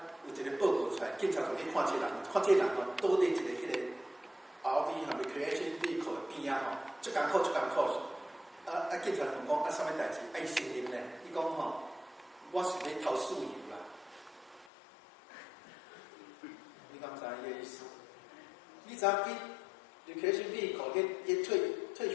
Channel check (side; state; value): right; drops out; at 14.7 s